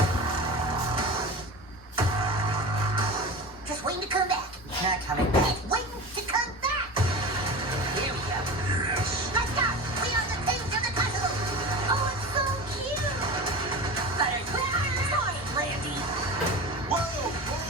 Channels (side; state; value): both; normal; correlation 0.30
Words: Just waiting to come back. Not coming back. Waiting to come back. Here we go. Yes. Let's go. We are the kings of the possible. Oh, it's so cute. Sorry, Randy. Whoa,